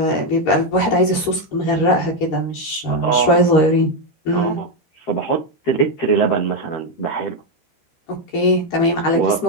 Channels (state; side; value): late; right; 13 ms